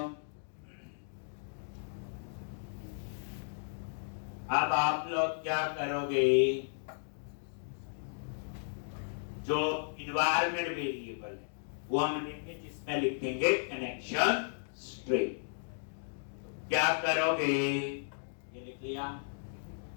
अब आप लोग क्या करोगे, जो इन्वायरमेंट वेरिएबल है वो हम लिखेंगे, जिसमें लिखेंगे कनेक्शन स्ट्रिंग। क्या करोगे, ये लिख लिया,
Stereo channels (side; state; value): right; silent; digital silence